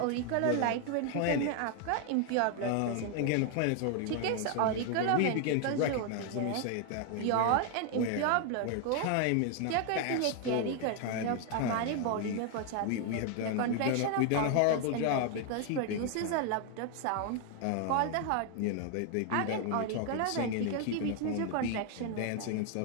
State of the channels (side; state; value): both; different; correlation 0.01